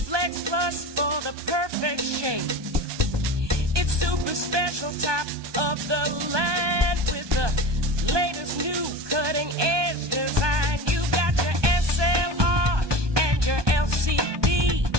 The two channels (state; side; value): late; left; 1.2 ms